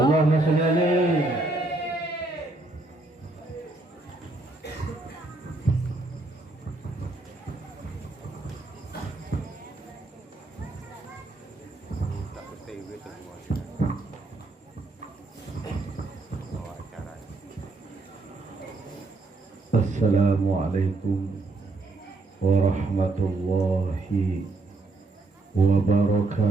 salli alaihi. Assalamualaikum warahmatullahi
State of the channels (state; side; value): quieter; left; 3.2 dB